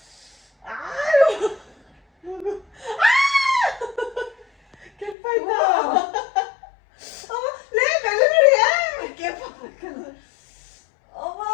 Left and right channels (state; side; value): drops out; right; at 5.2 s